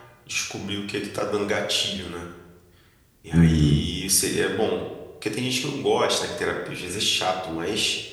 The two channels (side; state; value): both; identical; correlation 1.00